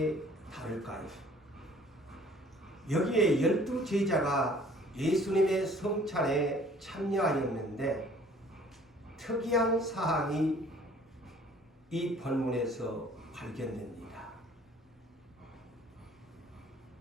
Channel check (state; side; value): normal; both; correlation 0.54